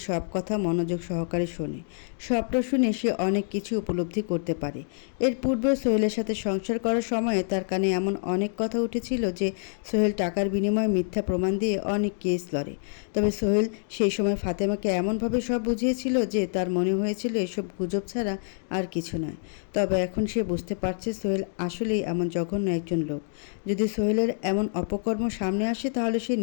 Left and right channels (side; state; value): right; silent; 60 dB below the other